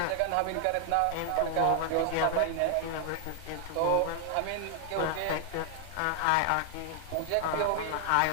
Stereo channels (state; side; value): different; both; correlation 0.00